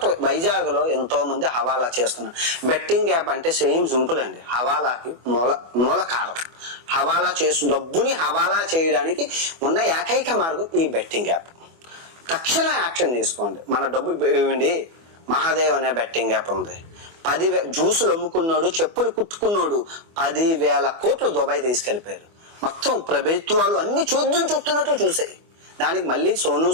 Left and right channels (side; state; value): left; late; 24 ms